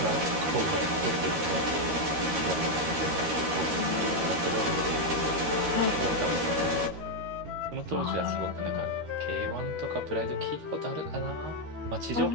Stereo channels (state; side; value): late; left; 13 ms